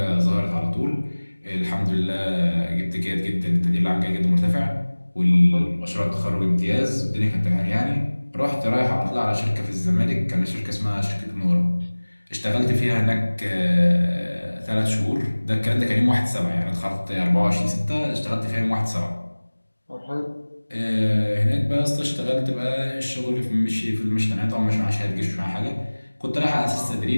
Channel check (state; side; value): inverted; both; correlation -1.00